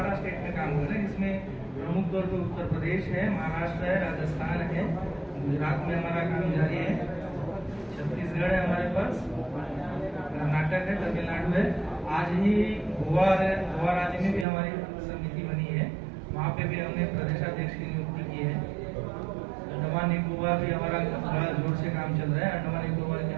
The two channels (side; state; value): left; drops out; at 14.5 s